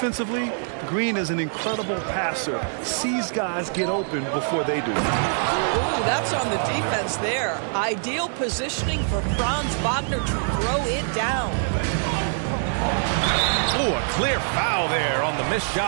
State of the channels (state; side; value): silent; left; digital silence